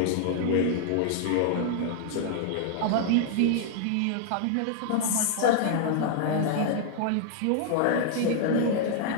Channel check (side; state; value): both; different; correlation -0.01